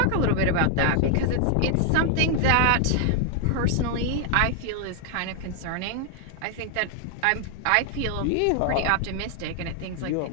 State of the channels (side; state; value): both; different; correlation 0.00